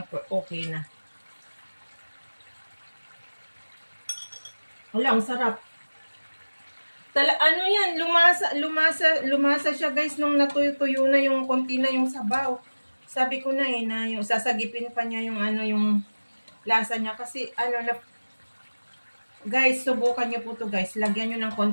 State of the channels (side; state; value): both; inverted; correlation -1.00